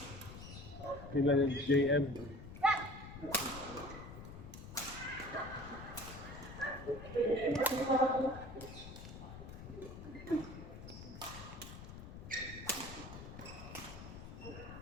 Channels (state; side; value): noise; left; rumble, 12 dB below the sound